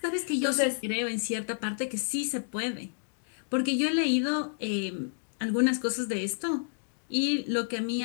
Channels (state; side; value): silent; right; digital silence